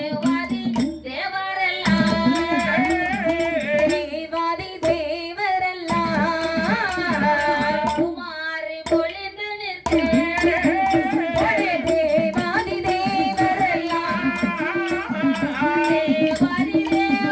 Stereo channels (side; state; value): both; identical; correlation 1.00